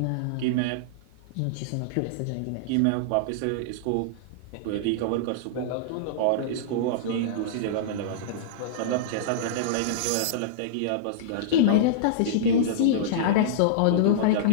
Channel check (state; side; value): different; both; correlation -0.03